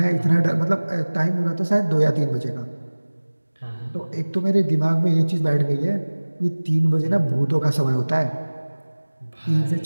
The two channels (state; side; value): inverted; both; correlation -1.00